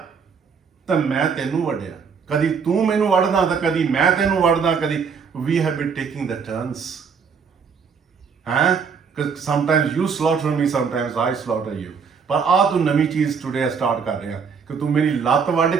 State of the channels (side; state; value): left; quieter; 6.1 dB